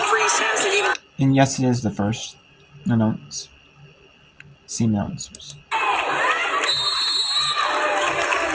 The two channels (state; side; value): identical; both; correlation 1.00